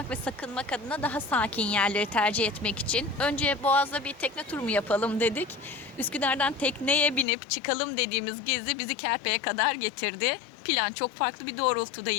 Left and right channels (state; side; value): drops out; right; at 7.2 s